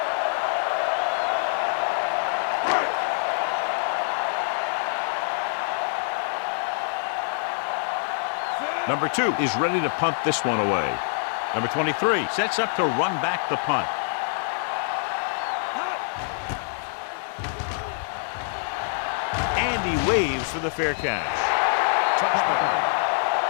Number 2 is ready to punt this one away. Number 23 sets up to run back the punt. And he waves for the fair catch. Touchback.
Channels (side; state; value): right; silent; digital silence